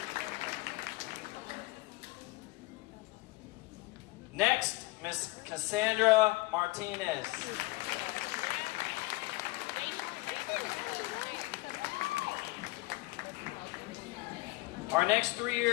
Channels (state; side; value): quieter; right; 21.8 dB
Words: Next, Miss Cassandra Martinez. Our next